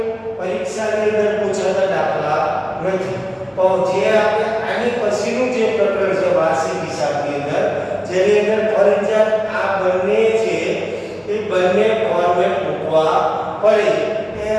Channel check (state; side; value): identical; both; correlation 1.00